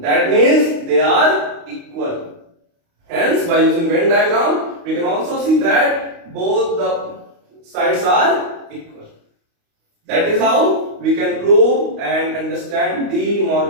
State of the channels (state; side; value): late; left; 29 ms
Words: That means they are equal. Hence, by using Venn diagram, we can also see that both the sides are equal. That is how we can prove and understand De